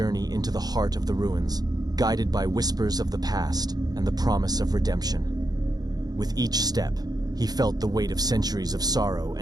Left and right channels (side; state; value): left; late; 0.19 ms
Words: into the heart of the ruins, guided by whispers of the past and the promise of redemption. With each step, he felt the weight of centuries of sorrow